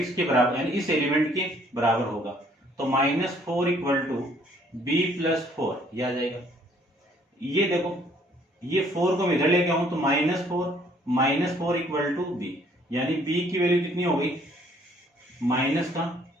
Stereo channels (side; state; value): both; normal; correlation 0.62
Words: के बराबर, यानी इस एलिमेंट के बराबर होगा, तो -4 इक्वल टू b प्लस 4 ये आ जाएगा। ये देखो ये 4 को मैं इधर लेके आऊं तो -4 इक्वल टू b, यानी b की वैल्यू कितनी हो गई